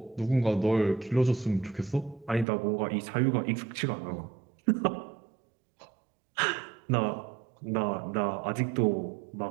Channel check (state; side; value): drops out; left; at 2.5 s